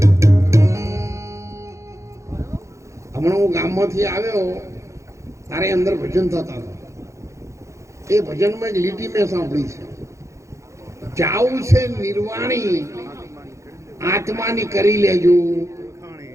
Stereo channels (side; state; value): left; late; 0.15 ms